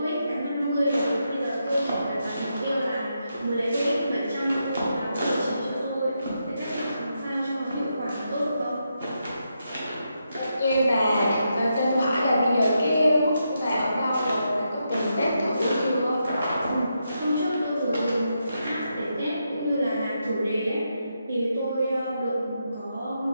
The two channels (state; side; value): inverted; both; correlation -0.83